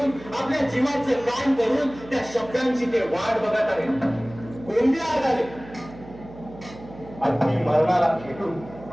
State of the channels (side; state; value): right; noise; hum, 17 dB below the sound